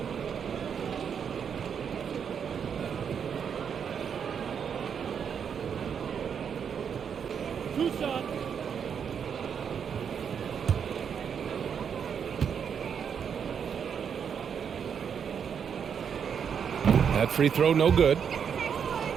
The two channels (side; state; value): left; quieter; 7.4 dB